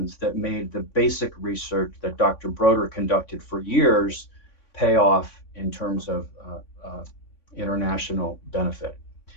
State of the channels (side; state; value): right; late; 3.5 ms